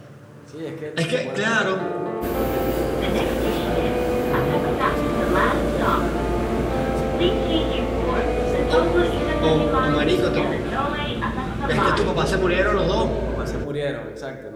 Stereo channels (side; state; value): both; identical; correlation 1.00